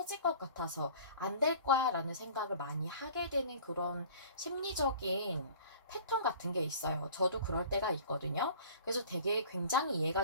것 같아서 안 될 거야 라는 생각을 많이 하게 되는 그런 심리적인 패턴 같은 게 있어요. 저도 그럴 때가 있거든요. 그래서 되게 굉장히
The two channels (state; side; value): inverted; both; correlation -0.45